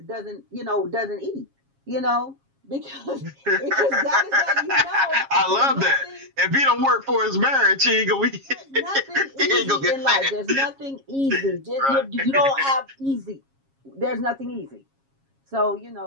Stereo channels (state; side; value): late; left; 7.3 ms